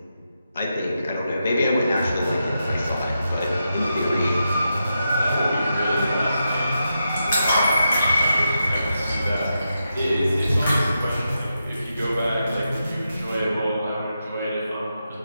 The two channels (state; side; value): inverted; both; correlation -0.87